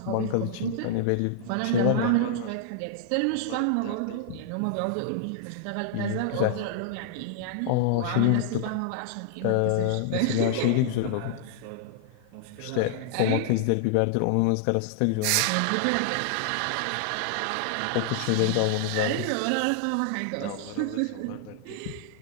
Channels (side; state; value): both; different; correlation -0.01